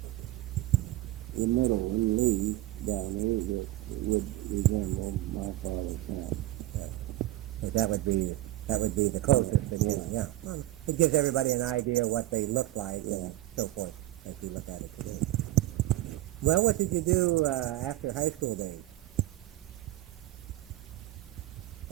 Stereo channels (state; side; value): quieter; left; 15.9 dB